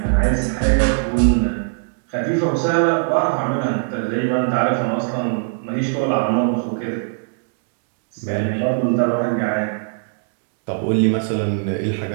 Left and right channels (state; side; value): silent; left; digital silence